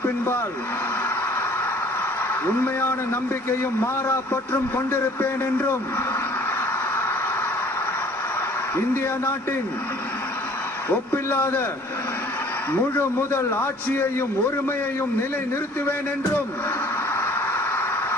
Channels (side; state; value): both; normal; correlation 0.53